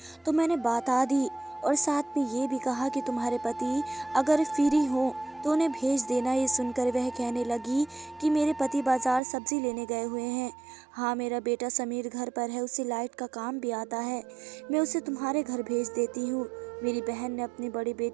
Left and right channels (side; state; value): left; drops out; at 9.2 s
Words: तो मैंने बता दी, और साथ में ये भी कहा कि तुम्हारे पति अगर फ्री हो तो उन्हें भेज देना। ये सुनकर वह कहने लगी कि मेरे पति बाजार सब्जी लेने गए हुए हैं। हाँ, मेरा बेटा समीर घर पर है, उसे लाइट का काम भी आता है। मैं उसे तुम्हारे घर भेज देती हूँ। मेरी बहन ने अपने बड़े